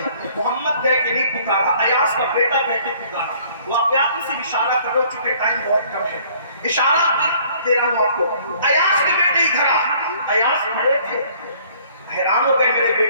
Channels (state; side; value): inverted; both; correlation -0.58